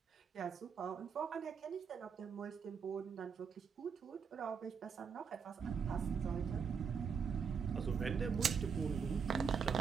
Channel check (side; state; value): left; quieter; 6.4 dB